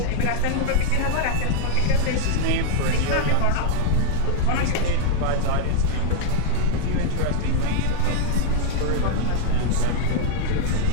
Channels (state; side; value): different; both; correlation 0.00